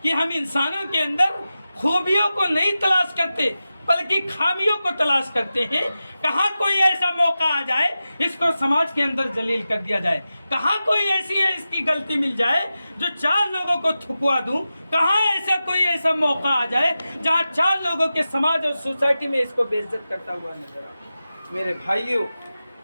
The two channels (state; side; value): inverted; both; correlation -0.93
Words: کہ ہم انسانوں کے اندر خوبیوں کو نہیں تلاش کرتے بلکہ خامیوں کو تلاش کرتے ہیں، کہاں کوئی ایسا موقع آ جائے اس کو سماج کے اندر ذلیل کر دیا جائے، کہاں کوئی ایسی ہے اس کی غلطی مل جائے جو 4 لوگوں کو تھکوا دوں، کہاں ایسا کوئی ایسا موقع آ جائے جہاں 4 لوگوں کے سماج اور سوسائٹی میں اس کو بے عزت کرتا ہوا نظر آئے۔ میرے بھائیوں،